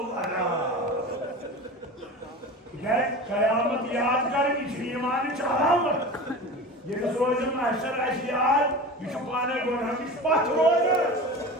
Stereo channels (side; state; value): both; normal; correlation 0.32